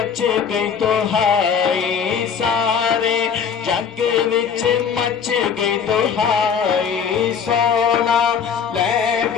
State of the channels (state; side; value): quieter; right; 6.9 dB